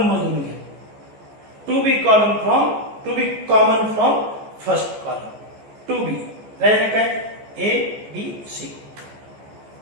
मधून घे. 2b common from first column. 2b राहिलं काय A B C,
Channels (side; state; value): left; late; 14 ms